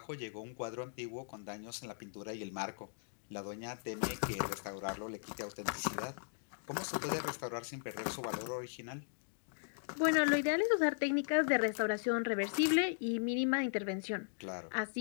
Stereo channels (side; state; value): right; silent; digital silence